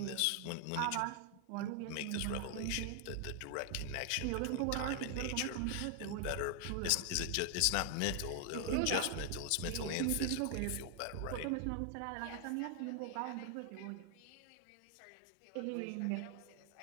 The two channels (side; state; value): both; different; correlation 0.00